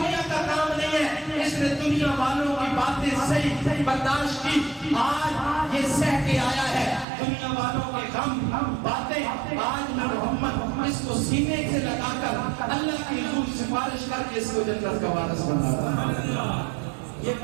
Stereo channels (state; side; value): drops out; left; at 7.1 s